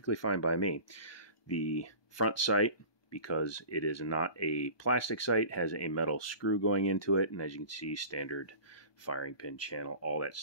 fine by me. The front sight, because it is not a plastic sight, has a metal screw going into it, and as you can see, standard firing pin channel, all that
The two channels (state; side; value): late; right; 1.2 ms